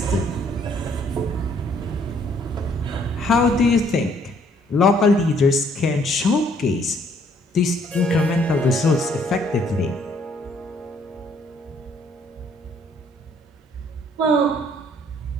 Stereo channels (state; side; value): normal; both; correlation 0.64